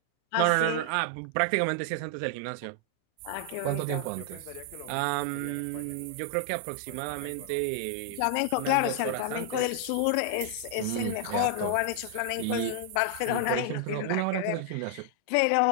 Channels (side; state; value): both; different; correlation 0.00